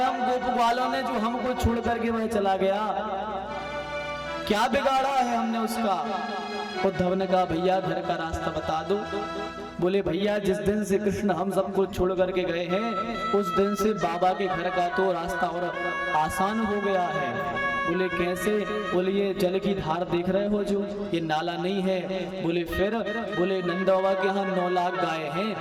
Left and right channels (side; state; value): both; identical; correlation 1.00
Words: हम गोप वालों ने जो हमको छोड़ करके वह चला गया? क्या बिगाड़ा है हमने उसका? उद्धव ने कहा भैया घर का रास्ता बता दो। बोले भैया जिस दिन से कृष्ण हम सबको छोड़ करके गए हैं उस दिन से बाबा के घर का तो रास्ता और आसान हो गया है। बोले कैसे? बोले ये जल की धार देख रहे हो जो ये नाला नहीं है। बोले फिर? बोले नंद बाबा के यहाँ 9 लाख गाय हैं।